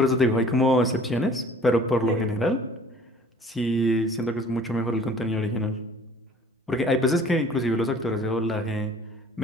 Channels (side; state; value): both; normal; correlation 0.51